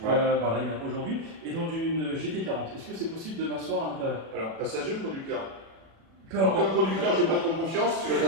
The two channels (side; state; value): left; late; 36 ms